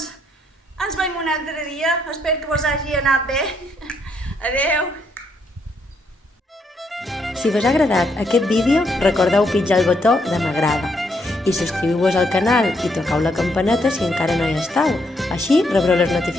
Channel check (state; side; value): normal; both; correlation 0.74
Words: ens veiem un altre dia, espero que vos hagi anat bé. Adeu! Si vos ha agradat aquest vídeo, recordeu pitjar el botó de m'agrada i subscriviu-vos al canal i tocau la campaneta si encara no hi esteu. Així rebreu les